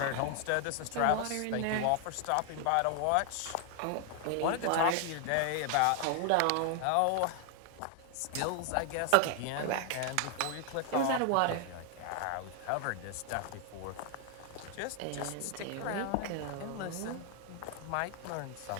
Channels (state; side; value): different; both; correlation 0.00